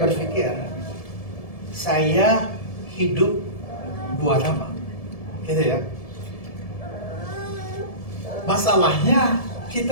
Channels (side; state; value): right; late; 1.7 ms